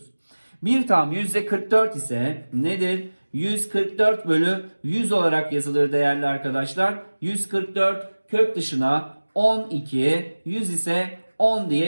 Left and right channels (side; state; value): both; inverted; correlation -1.00